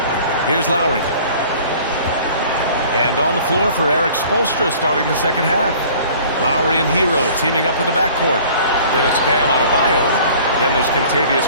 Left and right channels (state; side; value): inverted; both; correlation -0.49